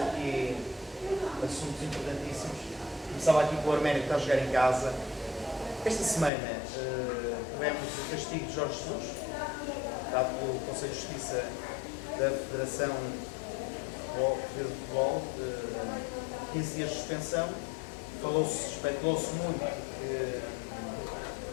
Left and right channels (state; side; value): drops out; right; at 6.3 s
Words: assuntos importantíssimos. Começava aqui com o Arménio, que está a jogar em casa. Esta semana tivemos o castigo de Jorge Jesus, dado pelo Conselho de Justiça da Federação de Futebol, 15 dias de suspensão. Especulou-se muito que